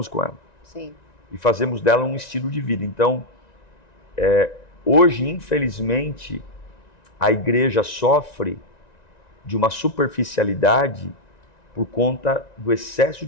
com ela. Sim. E fazemos dela um estilo de vida. Então, hoje, infelizmente, a igreja sofre de uma superficialidade por conta do excesso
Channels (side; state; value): right; late; 1.9 ms